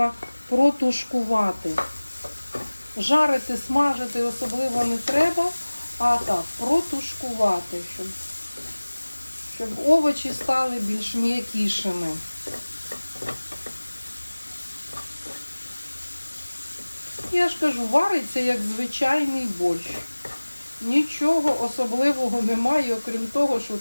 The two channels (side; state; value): both; inverted; correlation -1.00